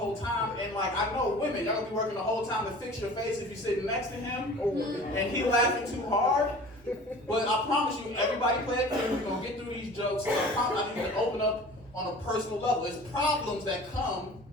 time. And, like, I know women, y'all gonna be working the whole time to fix your face if you're sitting next to him and he laughing too hard. But I promise you, everybody play it cool. We're gonna get through these jokes. So I promise I need to open up on a personal level. It's problems that come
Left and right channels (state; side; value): normal; both; correlation 0.42